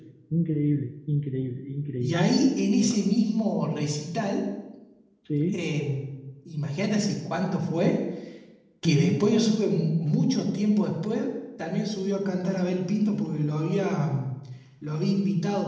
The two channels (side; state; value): both; identical; correlation 1.00